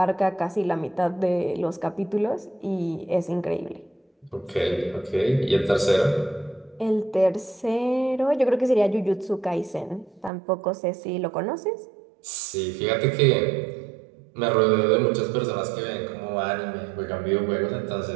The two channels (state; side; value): drops out; left; at 10.3 s